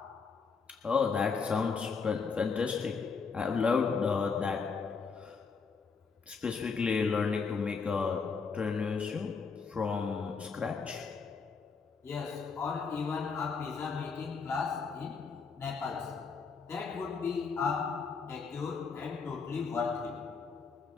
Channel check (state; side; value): quieter; right; 5.2 dB